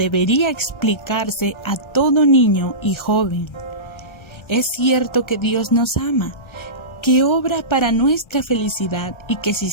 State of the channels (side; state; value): right; late; 1.3 ms